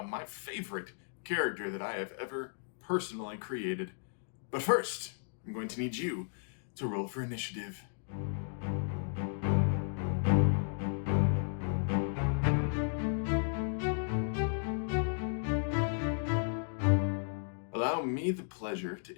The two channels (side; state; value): right; silent; digital silence